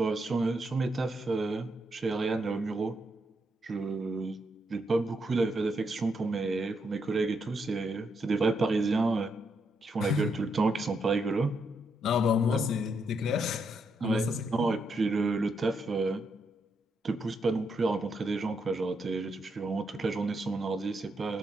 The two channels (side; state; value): both; normal; correlation 0.80